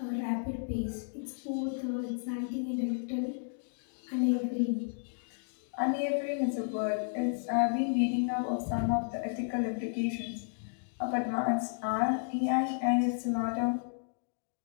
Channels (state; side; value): silent; right; digital silence